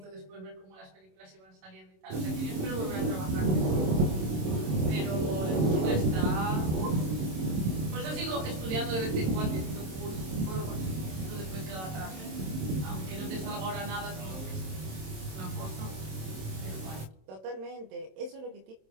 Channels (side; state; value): left; late; 27 ms